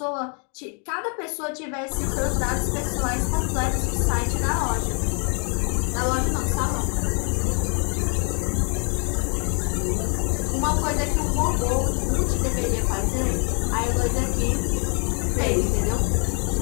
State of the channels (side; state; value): right; quieter; 39.1 dB